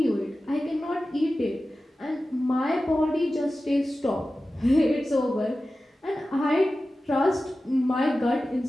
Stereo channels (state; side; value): normal; both; correlation 0.95